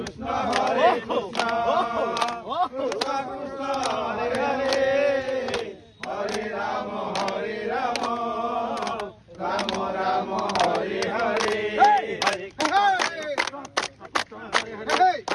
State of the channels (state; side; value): identical; both; correlation 1.00